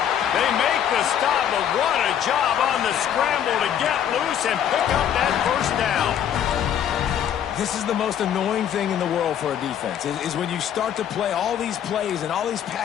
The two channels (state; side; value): quieter; right; 9.6 dB